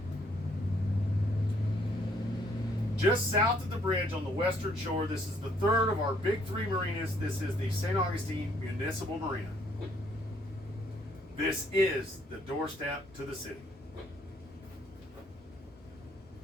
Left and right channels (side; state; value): both; normal; correlation 0.66